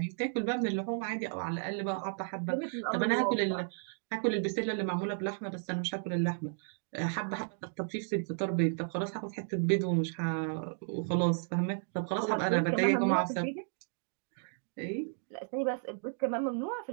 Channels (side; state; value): left; silent; digital silence